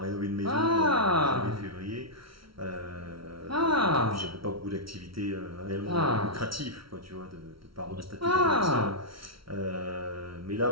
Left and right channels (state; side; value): late; left; 0.75 ms